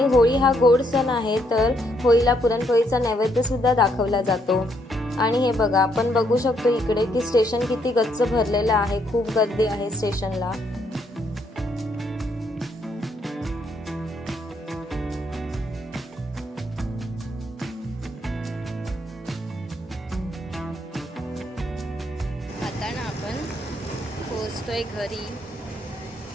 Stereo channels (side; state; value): both; normal; correlation 0.73